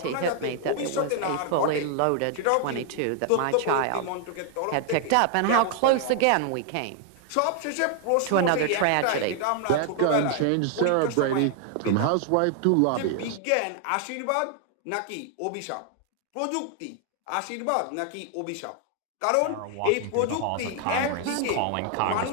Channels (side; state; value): both; different; correlation 0.00